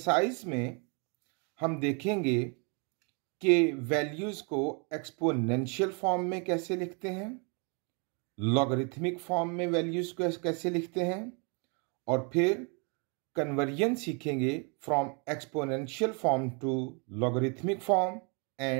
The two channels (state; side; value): quieter; left; 36.0 dB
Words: में हम देखेंगे कि values को एक्सपोनेंशियल फॉर्म में कैसे लिखते हैं, लॉगरिथमिक फॉर्म में वैल्यूज को कैसे लिखते हैं, और फिर कन्वर्जन सीखेंगे from exponential form to logarithmic form